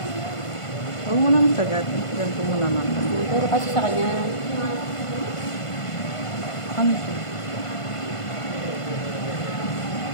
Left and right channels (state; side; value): late; right; 1.5 ms